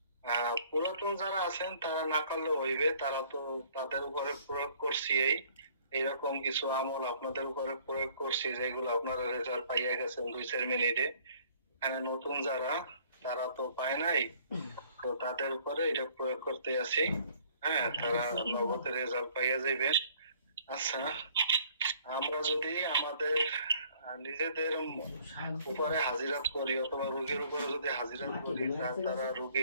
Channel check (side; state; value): both; inverted; correlation -0.58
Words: পুরাতন যারা আছেন তারা না করলে হইবে, তারা তো তাদের উপরে প্রয়োগ করছি। এইরকম কিছু আমল আপনাদের উপরে প্রয়োগ করছি যেগুলো আপনারা রেজাল্ট পাইয়া গেছেন 2-4 মিনিটে। এখানে নতুন যারা, তারা তো পায় নাই, তো তাদের উপরে এটা প্রয়োগ করতে আছি। হ্যাঁ, তারা নগদের রেজাল্ট পাইয়া যাইবে। আচ্ছা, আমরা যদি আমাদের নিজেদের উপরে হাজিরাত করি অথবা রোগীর উপরে যদি হাজিরাত করি, তারা